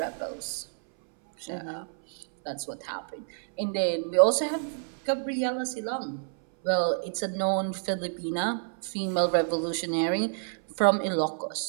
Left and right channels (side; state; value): left; silent; 59 dB below the other